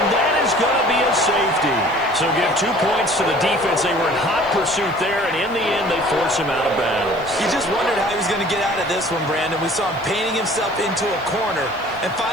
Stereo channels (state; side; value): noise; right; hiss, 27 dB below the sound